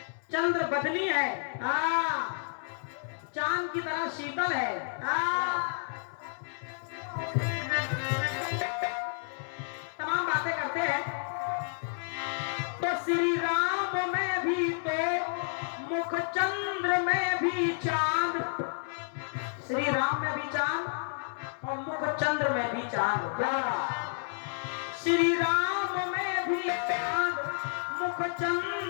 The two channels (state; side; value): silent; right; 57 dB below the other